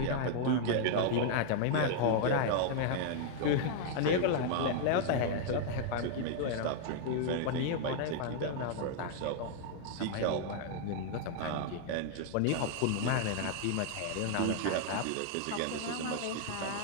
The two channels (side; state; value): both; different; correlation 0.00